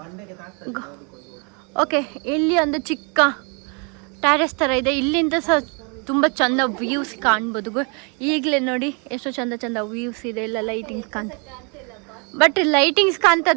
ಓಕೆ, ಇಲ್ಲಿ ಒಂದು ಚಿಕ್ಕ ಟ್ಯಾರೆಸ್ ಥರ ಇದೆ. ಇಲ್ಲಿಂದ ಸಹ ತುಂಬ ಚಂದ ವ್ಯೂಸ್ ಕಾಣ್ಬೋದು. ಈಗಲೇ ನೋಡಿ ಎಷ್ಟು ಚಂದ ವ್ಯೂಸ್ ಇದೆ. ಎಲ್ಲ ಲೈಟಿಂಗ್ಸ್ ಬಟ್ ಲೈಟಿಂಗ್ಸ್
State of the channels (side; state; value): left; quieter; 34.8 dB